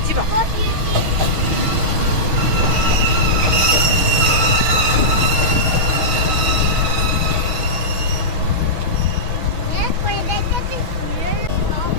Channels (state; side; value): late; left; 6.2 ms